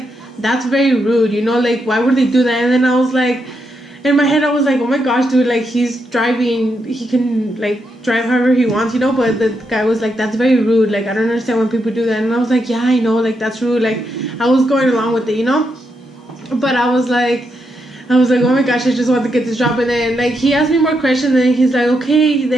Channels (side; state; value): both; normal; correlation 0.81